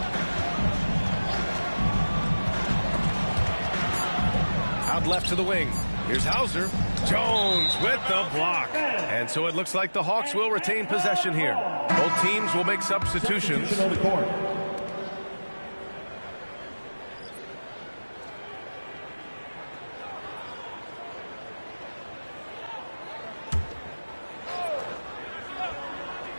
Out left to the wing. Here's Hauser. Jones with the block. And so it looks like the Hawks will retain possession here. Both teams will make substitutions.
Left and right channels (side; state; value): both; inverted; correlation -1.00